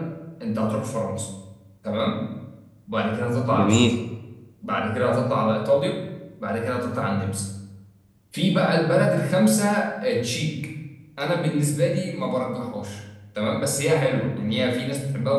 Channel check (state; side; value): identical; both; correlation 1.00